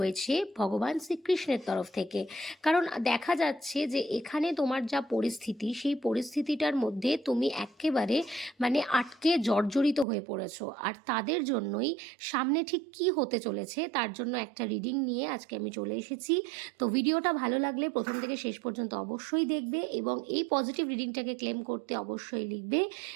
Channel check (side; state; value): left; drops out; at 10.1 s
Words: ভগবান শ্রীকৃষ্ণের তরফ থেকে। কারণ দেখা যাচ্ছে যে এখানে তোমার যা পরিস্থিতি, সেই পরিস্থিতিটার মধ্যে তুমি একেবারে আটকে জর্জরিত হয়ে পড়েছো, আর তাদের জন্যই সামনে ঠিক কি হতে চলেছে তার জন্য একটা রিডিং নিয়ে আজকে আমি চলে এসেছি। তো ভিডিওটা ভালো লাগলে প্রথম থেকে শেষ পর্যন্ত অবশ্যই দেখবে এবং এই পজিটিভ রিডিংটাকে ক্লেম করতে অবশ্যই লিখবে